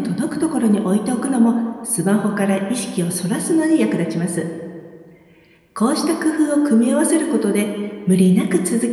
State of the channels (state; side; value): identical; both; correlation 1.00